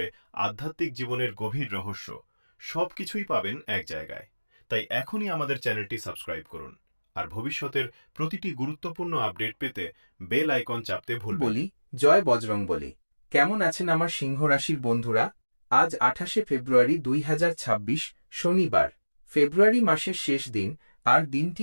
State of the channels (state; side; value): inverted; both; correlation -1.00